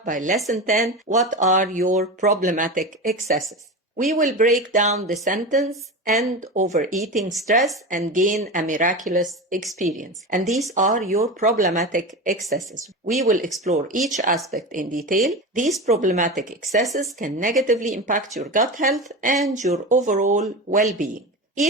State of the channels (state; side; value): normal; both; correlation 0.25